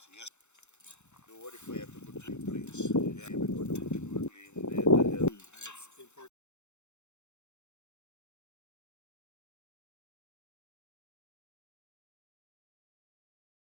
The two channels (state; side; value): late; right; 0.83 ms